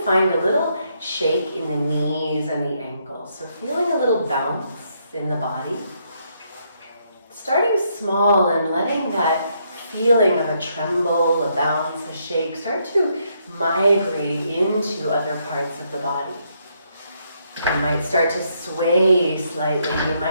find a little shake in the knees and the ankles. So feeling a little bounce in the body. Starting small and letting that feeling of a tremble, a bounce, a shake start to migrate into other parts of the body. You might start to sway slightly. You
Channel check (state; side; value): inverted; both; correlation -0.74